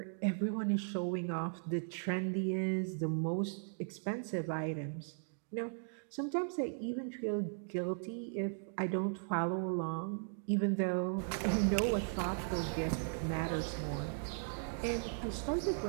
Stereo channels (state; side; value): silent; left; digital silence